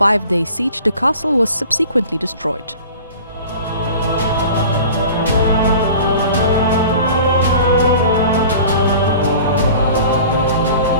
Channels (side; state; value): both; inverted; correlation -0.42